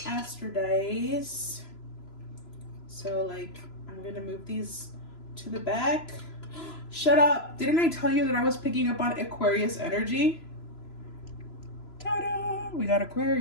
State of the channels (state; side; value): late; right; 3.0 ms